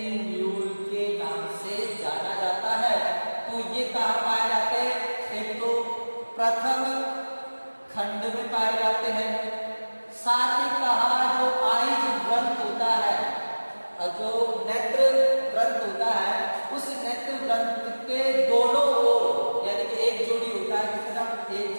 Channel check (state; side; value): inverted; both; correlation -1.00